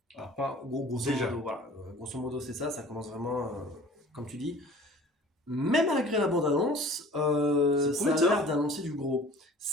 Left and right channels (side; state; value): both; normal; correlation 0.46